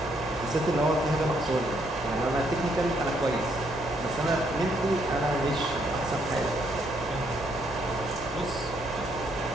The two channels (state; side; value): normal; both; correlation 0.72